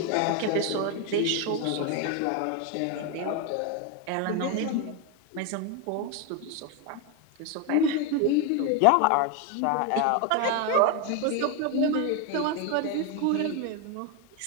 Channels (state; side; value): different; both; correlation 0.01